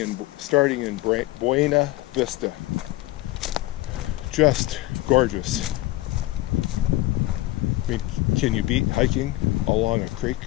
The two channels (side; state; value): right; quieter; 17.4 dB